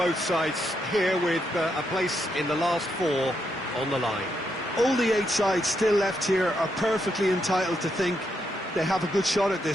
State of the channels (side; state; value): both; normal; correlation 0.80